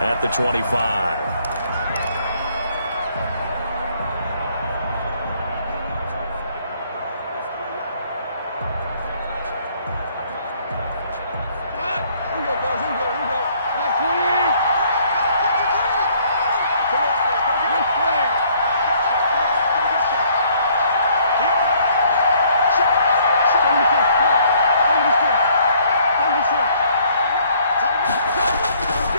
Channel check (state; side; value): inverted; both; correlation -0.63